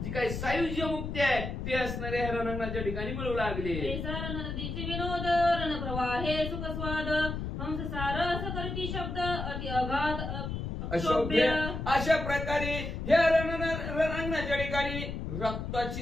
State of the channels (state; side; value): noise; left; rumble, 5 dB below the sound